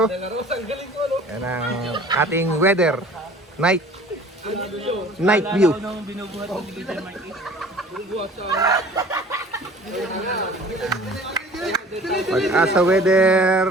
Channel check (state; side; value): normal; both; correlation 0.47